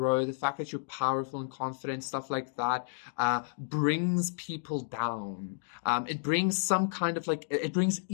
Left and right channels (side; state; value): right; silent; digital silence